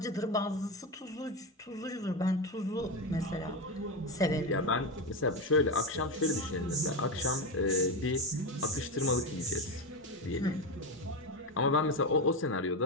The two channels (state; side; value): normal; both; correlation 0.14